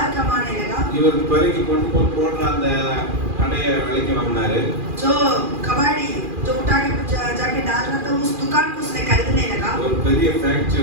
कमाने लगा. இவர் பறக்கி கொண்டு போய் போடுற அந்த கடையை விலைக்கு வாங்கினாரு. जो कबाड़ी जो उठा के जाके डाल रहा था उस दुकान को उसने खरीदने लगा. ஒரு பெரிய ஃபேக்டரி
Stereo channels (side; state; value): left; late; 2.4 ms